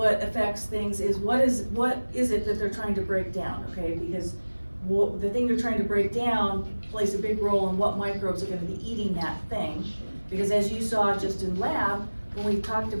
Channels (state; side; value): inverted; both; correlation -1.00